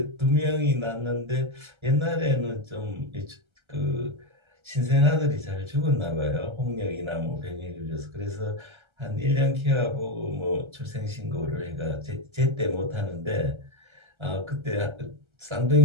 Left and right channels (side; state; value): left; late; 1.3 ms